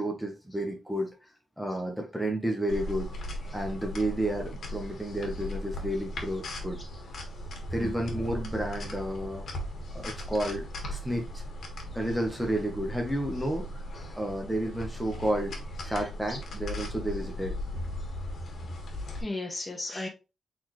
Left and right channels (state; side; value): normal; both; correlation 0.83